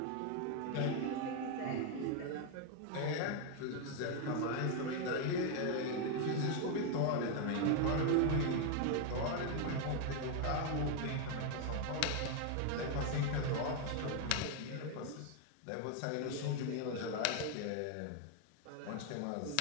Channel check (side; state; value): both; different; correlation 0.01